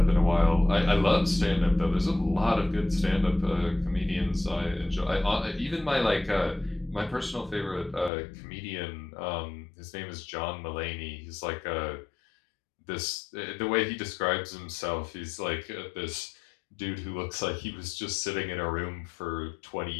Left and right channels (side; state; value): right; drops out; at 8.1 s